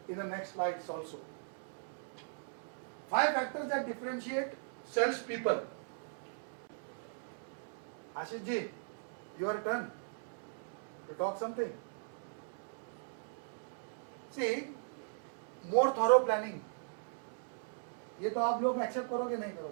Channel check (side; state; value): left; silent; digital silence